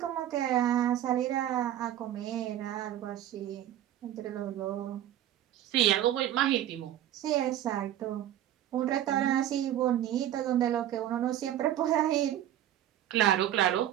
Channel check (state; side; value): quieter; left; 11.9 dB